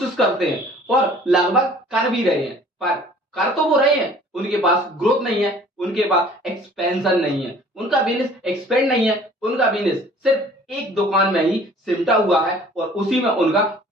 करते हैं और लगभग कर भी रहे हैं, पर कर तो वो रहे हैं, उनके पास ग्रोथ नहीं है, उनके पास एक्सपेंशन नहीं है, उनका बिजनेस एक्सपेंड नहीं है, उनका बिजनेस सिर्फ एक दुकान में ही सिमटा हुआ है और उसी में उनका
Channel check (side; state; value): both; normal; correlation 0.51